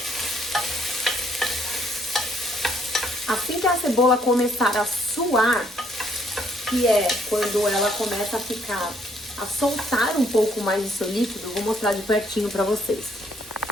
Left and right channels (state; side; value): normal; both; correlation 0.67